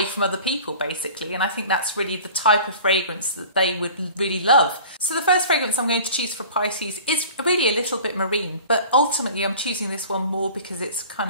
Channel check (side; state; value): both; inverted; correlation -0.42